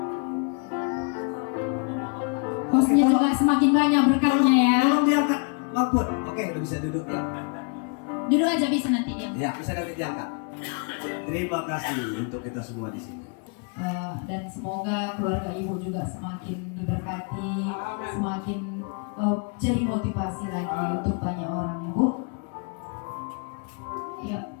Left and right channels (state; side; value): quieter; right; 38.3 dB